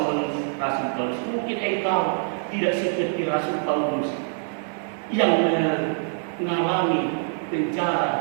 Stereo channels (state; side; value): silent; left; 59 dB below the other